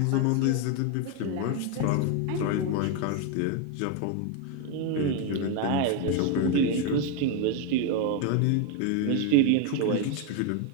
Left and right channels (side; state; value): both; different; correlation 0.02